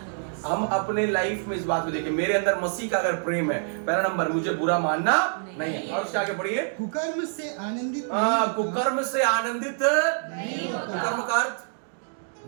हम अपने लाइफ में इस बात को देखें, मेरे अंदर मसीह का अगर प्रेम है, पहला नंबर, मुझे बुरा मानना नहीं है। और उसके आगे पढ़िए, कुकर्म से आनंदित कुकर्म से आनंदित नहीं होता। कुकर्म का अर्थ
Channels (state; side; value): silent; left; digital silence